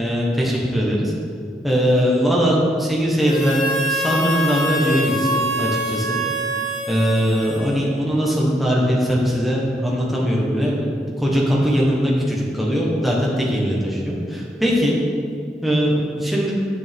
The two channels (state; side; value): normal; both; correlation 0.76